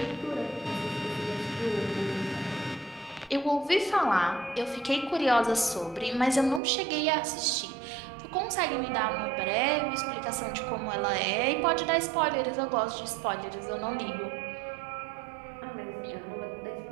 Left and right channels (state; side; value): drops out; left; at 6.6 s